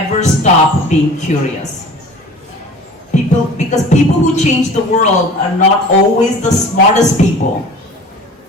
stop being curious. Because people who change the world are not always the smartest people.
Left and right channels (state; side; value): normal; both; correlation 0.42